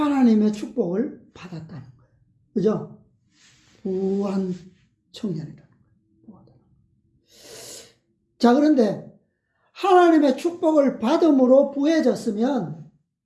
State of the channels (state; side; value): identical; both; correlation 1.00